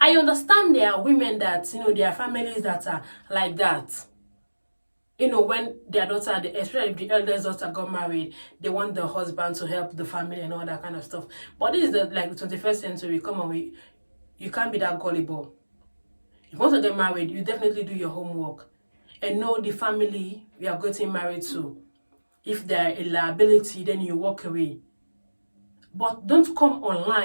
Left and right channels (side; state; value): both; inverted; correlation -1.00